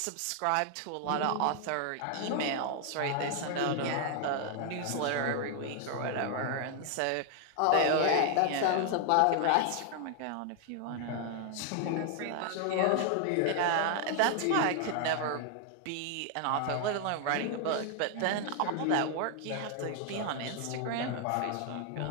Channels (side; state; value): both; different; correlation 0.00